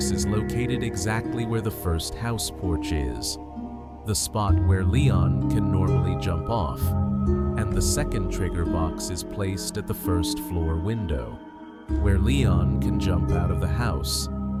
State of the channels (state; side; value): identical; both; correlation 1.00